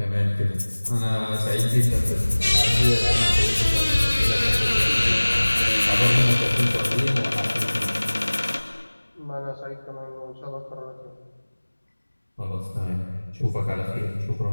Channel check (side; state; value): both; inverted; correlation -1.00